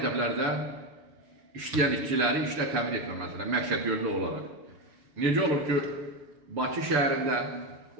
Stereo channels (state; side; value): late; left; 6.8 ms